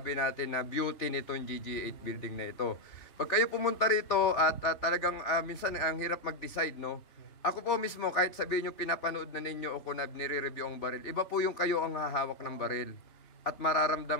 natin na beauty nitong GG8 building na ito. Pag kayo pumunta rito at talagang minsan ang hirap mag-decide, no? Ako po mismo, kahit sabihin nyo pinapanood na ninyo o kung nire-review ang baril, iba po yung kayo ang hahawak ng baril. At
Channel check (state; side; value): late; right; 3.6 ms